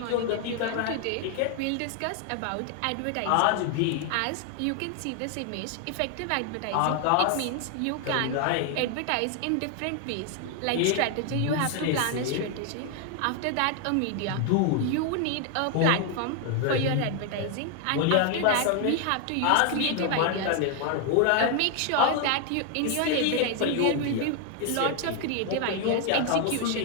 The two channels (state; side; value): different; both; correlation 0.00